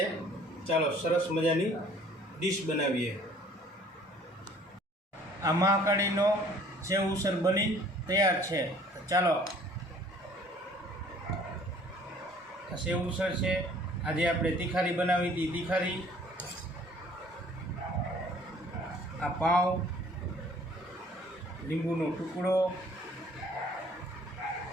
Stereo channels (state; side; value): normal; both; correlation 0.55